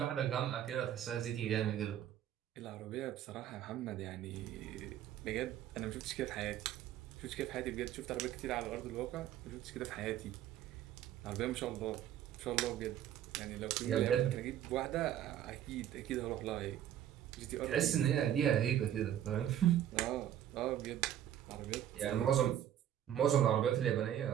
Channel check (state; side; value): quieter; left; 11.0 dB